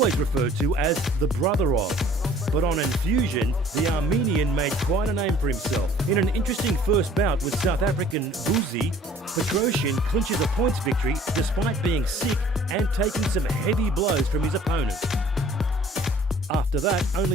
referred to as the brother of, but on Enfusion, the Armenian made quite a name for himself. In an interesting first bout with South African Vuyisile, Petrosyan clinches a points victory despite being sick and taking some heavy blows from his opponent. After that,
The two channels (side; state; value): both; normal; correlation 0.53